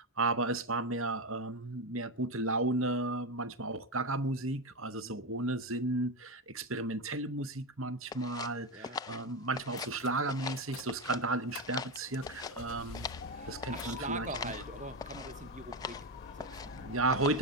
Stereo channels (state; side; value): normal; both; correlation 0.12